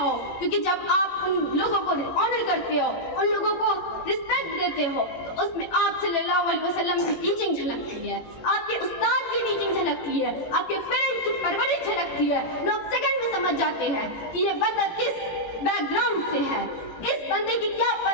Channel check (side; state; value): right; late; 18 ms